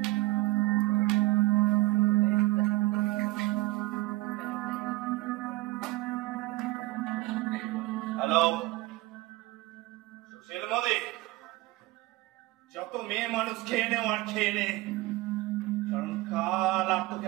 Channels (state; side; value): quieter; left; 19.4 dB